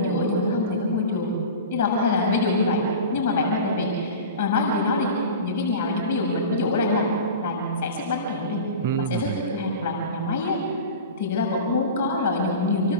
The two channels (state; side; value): inverted; both; correlation -0.33